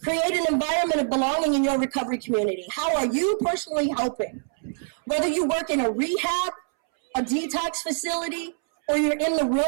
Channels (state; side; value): silent; left; 62 dB below the other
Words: Create an environment of belonging in your recovery community. How are you personally helping? Whether you work in a rehab, a detox facility, or you're in the